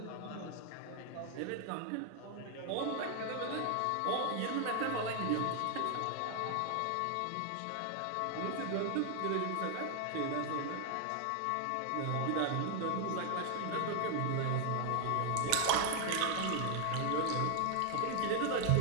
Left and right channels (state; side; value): different; both; correlation 0.00